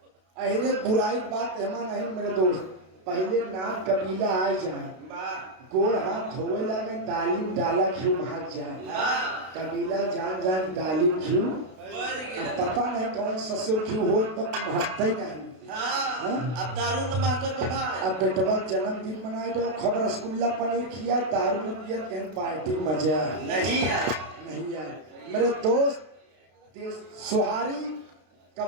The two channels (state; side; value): late; left; 32 ms